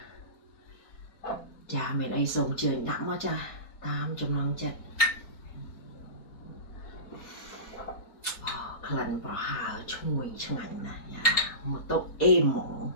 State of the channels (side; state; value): right; late; 4.2 ms